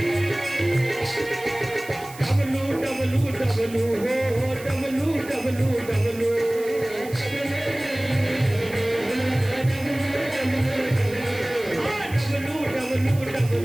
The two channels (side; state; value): right; noise; hiss, 17 dB below the sound